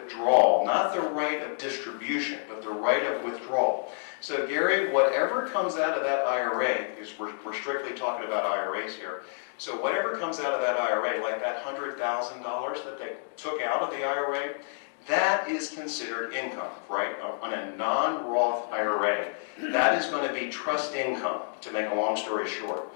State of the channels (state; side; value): silent; right; digital silence